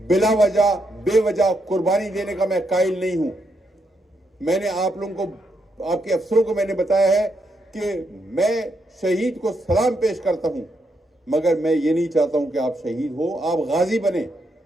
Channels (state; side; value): normal; both; correlation 0.79